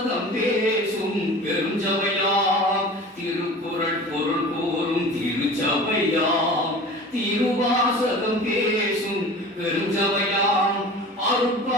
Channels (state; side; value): normal; both; correlation 0.38